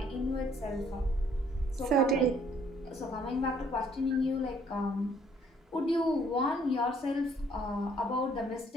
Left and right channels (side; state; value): both; normal; correlation 0.63